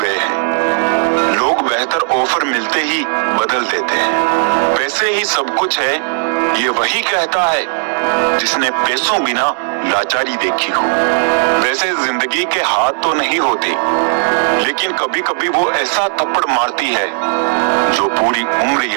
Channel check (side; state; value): left; silent; 60 dB below the other